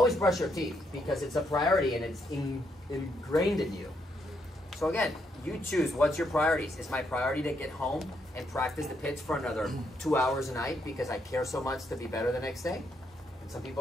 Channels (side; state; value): both; normal; correlation 0.76